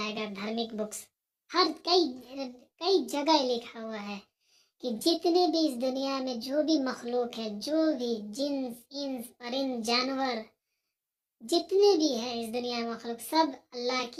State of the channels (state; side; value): identical; both; correlation 1.00